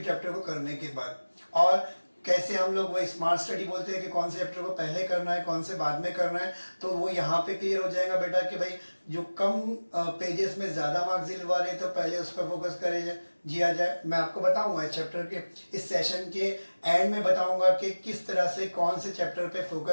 चैप्टर को करने के बाद। और कैसे हम लोग वही स्मार्ट स्टडी बोलते हैं कि कौन से चैप्टर को पहले करना है, कौन से बाद में करना है, तो वो यहाँ पे क्लियर हो जाएगा बेटा कि भाई जो कम पेजेस में ज़्यादा मार्क्स दिलवा रहे तो पहले उस पर फोकस किया जाए। मैं आपको बताऊंगा इस चैप्टर के इस सेशन के एंड में बताऊंगा कि किस तरह से कौन से चैप्टर पे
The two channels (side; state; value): both; inverted; correlation -1.00